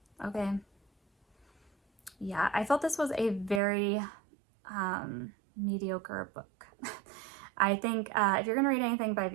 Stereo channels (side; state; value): left; drops out; at 3.6 s